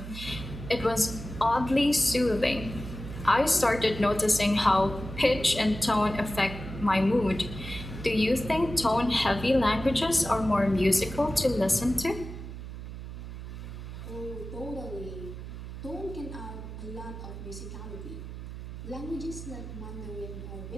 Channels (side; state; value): right; noise; hum, 10 dB below the sound